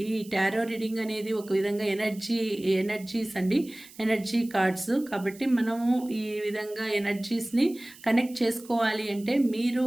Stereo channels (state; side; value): noise; right; hiss, 21 dB below the sound